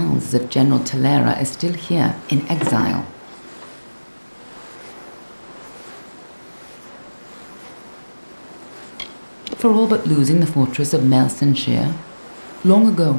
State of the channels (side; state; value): both; inverted; correlation -1.00